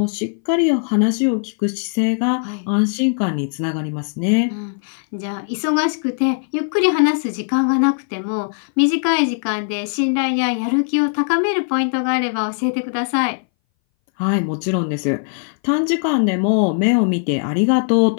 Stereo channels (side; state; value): right; silent; 61 dB below the other